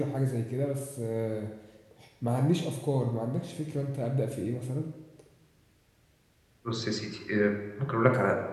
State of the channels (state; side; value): identical; both; correlation 1.00